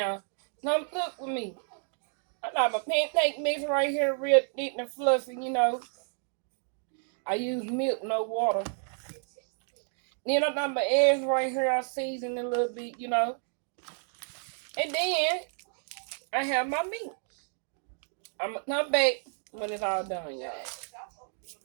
Come cook with me. I got my pancake mix right here, real thick and fluffy, I use milk, no water. Then I got my eggs right here, I season a little bit. And then I have my meat. I'm gonna come back when it's all done, y'all.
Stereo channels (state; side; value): silent; left; 57 dB below the other